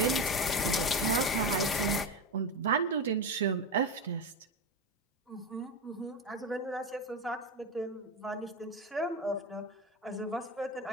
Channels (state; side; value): normal; both; correlation 0.18